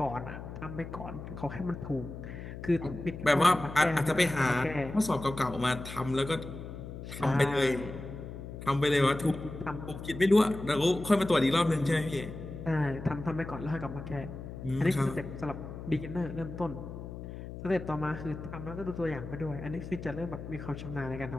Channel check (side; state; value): left; noise; hum, 10 dB below the sound